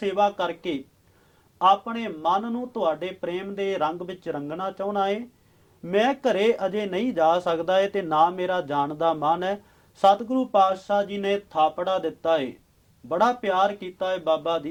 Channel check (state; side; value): identical; both; correlation 1.00